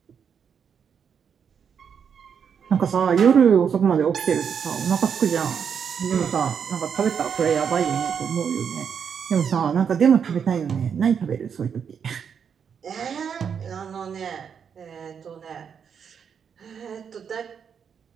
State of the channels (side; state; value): left; quieter; 7.2 dB